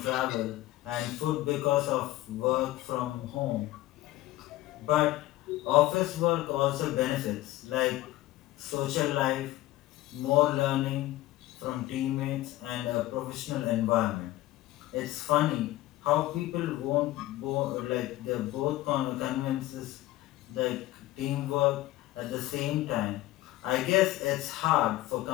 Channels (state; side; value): quieter; right; 16.6 dB